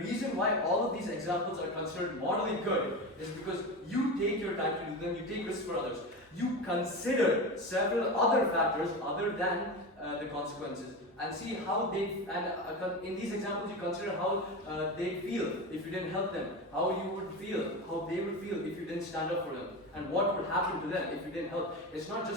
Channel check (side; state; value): both; normal; correlation 0.23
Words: why all of these examples are considered morally good is because you take your time to do them, you take risks for others. You consider several other factors other than the consequences and see how they, and in these examples you consider how they feel if you didn't help them, how you would feel, how they would feel if you didn't stand up for them, and what would happen to them if you didn't help. It's not